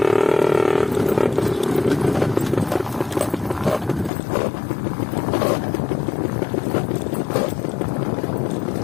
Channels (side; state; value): right; drops out; at 4.1 s